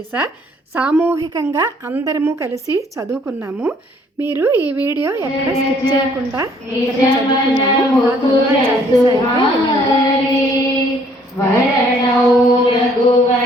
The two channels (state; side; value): normal; both; correlation 0.62